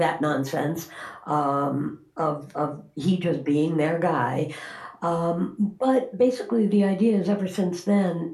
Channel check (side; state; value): both; identical; correlation 1.00